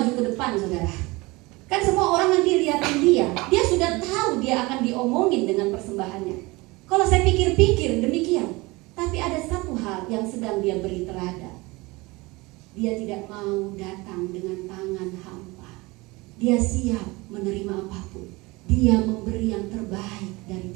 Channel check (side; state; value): left; quieter; 23.2 dB